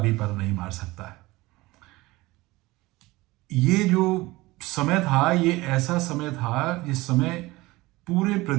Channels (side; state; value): left; quieter; 20.4 dB